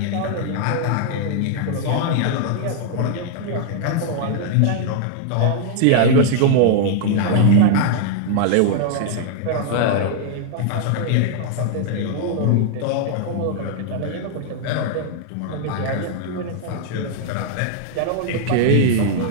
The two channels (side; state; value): both; different; correlation -0.01